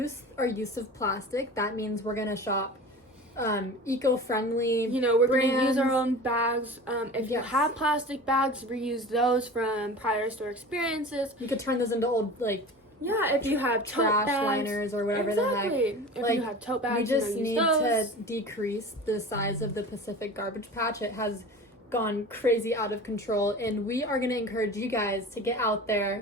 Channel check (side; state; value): both; normal; correlation 0.36